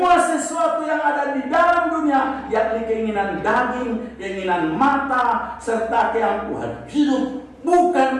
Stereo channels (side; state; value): both; identical; correlation 1.00